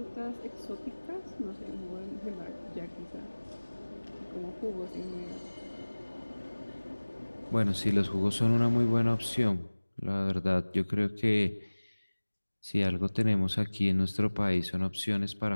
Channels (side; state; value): both; inverted; correlation -1.00